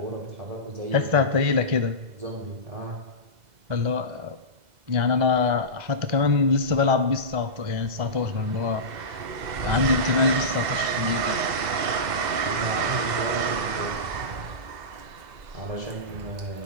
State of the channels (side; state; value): left; late; 2.0 ms